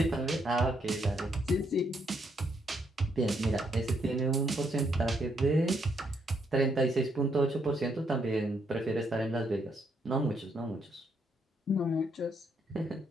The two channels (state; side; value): normal; both; correlation 0.75